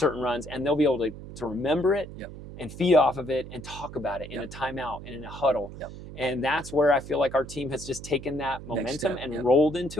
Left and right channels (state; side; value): noise; right; hum, 13 dB below the sound